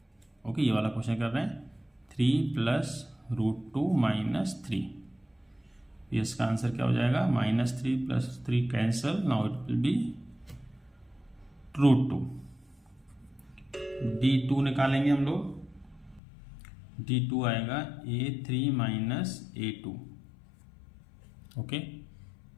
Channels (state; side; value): drops out; right; at 16.2 s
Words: ओके, ये वाला क्वेश्चन कर रहे हैं। 3 प्लस √2 माइनस 3। इसका आंसर क्या हो जाएगा? -3 plus 3 cancel, now it will be √2। D2 निकालेंगे हम लोग। D2 आएगा A3 माइनस A2। ओके,